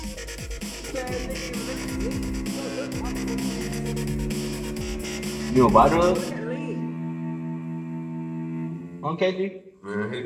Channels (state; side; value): identical; both; correlation 1.00